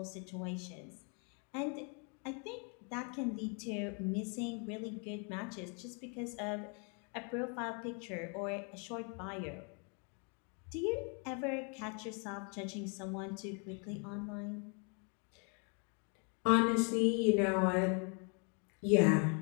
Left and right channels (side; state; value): right; quieter; 37.4 dB